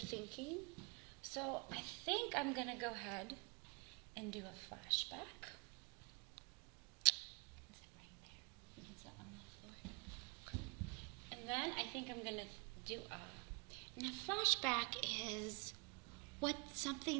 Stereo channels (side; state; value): left; quieter; 32.5 dB